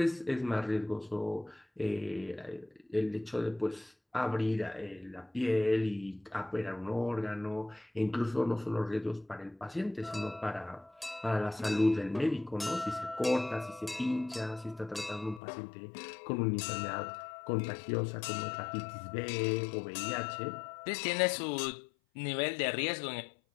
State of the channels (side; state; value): right; drops out; at 15.4 s